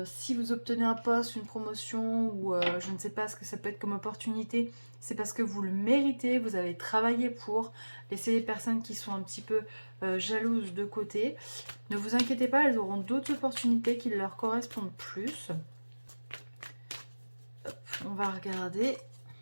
Si vous obtenez un poste, une promotion ou je ne sais pas ce que ça peut être comme opportunité, c'est parce que vous le méritez, vous avez travaillé pour. Laissez les personnes qui sont un petit peu jalouses de côté. Ne vous inquiétez pas, elles auront d'autres opportunités qui leur correspondent plus. On va regarder.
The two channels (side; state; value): both; inverted; correlation -1.00